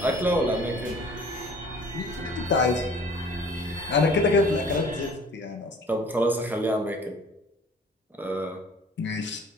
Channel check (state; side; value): normal; both; correlation 0.49